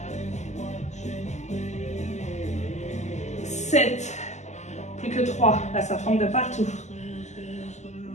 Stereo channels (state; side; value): late; right; 0.33 ms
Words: 7. Plus que 3. Là, ça tremble de partout.